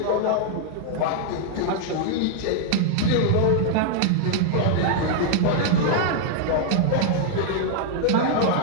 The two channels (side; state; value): both; different; correlation 0.00